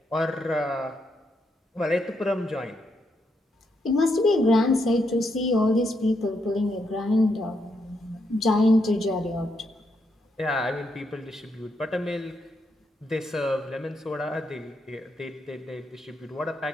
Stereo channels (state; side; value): normal; both; correlation 0.79